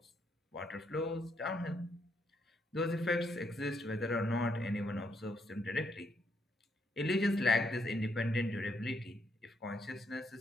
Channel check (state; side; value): normal; both; correlation 0.75